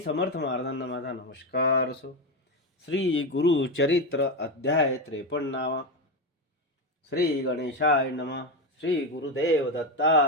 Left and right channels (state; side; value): normal; both; correlation 0.13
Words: महाराजांना माझा नमस्कार असो. श्री गुरुचरित्र अध्याय 53. श्री गणेशाय नमः. श्री गुरुदेव